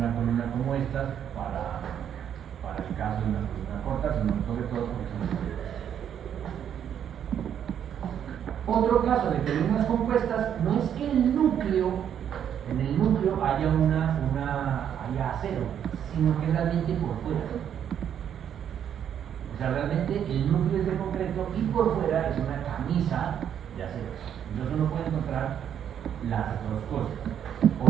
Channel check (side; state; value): left; quieter; 9.1 dB